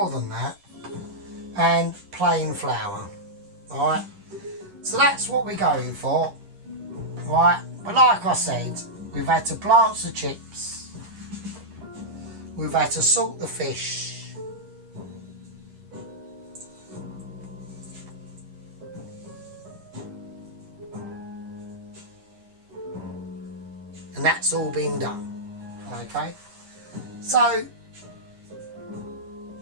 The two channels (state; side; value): late; left; 10 ms